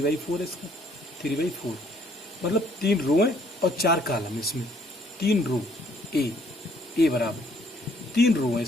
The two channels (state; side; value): normal; both; correlation 0.64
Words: है इसका। 3/4 मतलब 3 रो है और 4 कॉलम इसमें। 3 रो ए बराबर 3 रो है